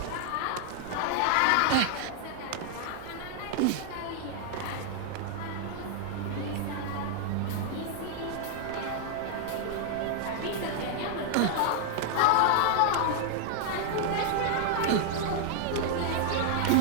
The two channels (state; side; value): different; both; correlation 0.00